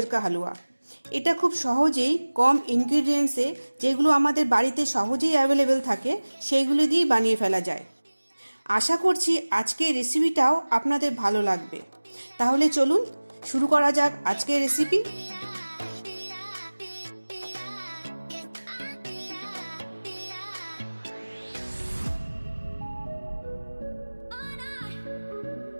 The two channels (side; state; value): both; inverted; correlation -1.00